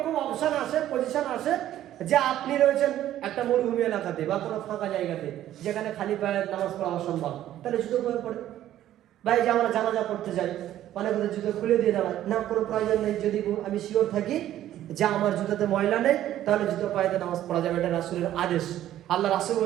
অপশন আসে, পজিশন আসে যে আপনি রয়েছেন একটা মরুভূমি এলাকাতে বা কোনো ফাঁকা জায়গাতে যেখানে খালি পায়ে নামাজ পড়া অসম্ভব, তাহলে জুতো পরে পড়ে। ভাই যে আমরা জানাজা পড়তে যাই অনেক জুতো খুলে দিয়ে দাঁড়ায় না, কোনো প্রয়োজন নেই। যদি আমি শিওর থাকি যে আমার জুতাতে ময়লা নেই তাহলে জুতো পায়ে নামাজ পড়া যাবে, এটা রাসূলের আদেশ। আল্লাহ রাসূল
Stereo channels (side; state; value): left; quieter; 12.6 dB